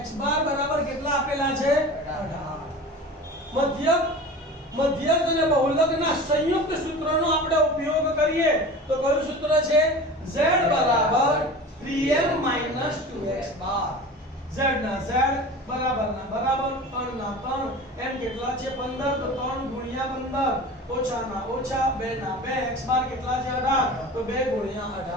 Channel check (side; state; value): both; normal; correlation 0.36